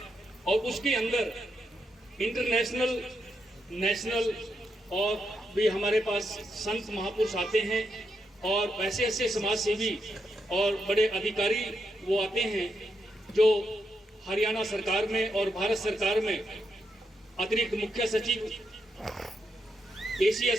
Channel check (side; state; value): both; normal; correlation 0.82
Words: और उसके अंदर इंटरनेशनल, नेशनल और भी हमारे पास संत महापुरुष आते हैं, और ऐसे ऐसे समाज सेवी और बड़े अधिकारी वो आते हैं जो हरियाणा सरकार में और भारत सरकार में अतिरिक्त मुख्य सचिव